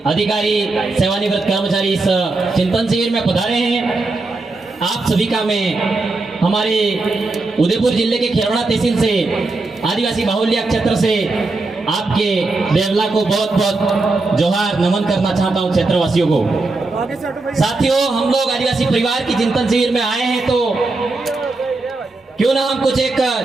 अधिकारी, सेवानिवृत्त कर्मचारी इस चिंतन शिविर में पधारे हैं। आप सभी का मैं हमारे उदयपुर जिले के खेरवड़ा तहसील से आदिवासी बाहुल्य क्षेत्र से आपके देवला को बहुत बहुत जोहार नमन करना चाहता हूं क्षेत्रवासियों को। साथियों, हम लोग आदिवासी परिवार की चिंतन शिविर में आए हैं तो क्यों ना हम कुछ एक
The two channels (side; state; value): left; quieter; 3.4 dB